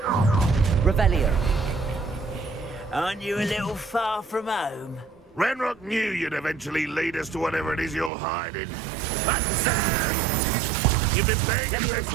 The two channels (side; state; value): left; drops out; at 8.1 s